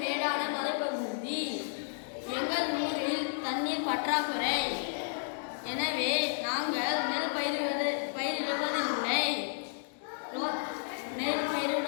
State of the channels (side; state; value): right; silent; digital silence